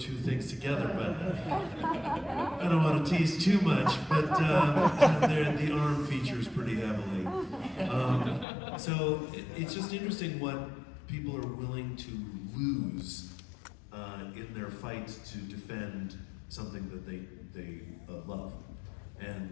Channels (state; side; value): drops out; right; at 8.5 s